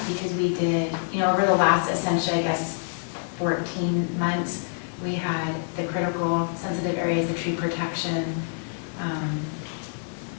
because we did, over the last, essentially, I guess, 14 months, we had the critical sensitive areas, the tree protection,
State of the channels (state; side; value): silent; right; digital silence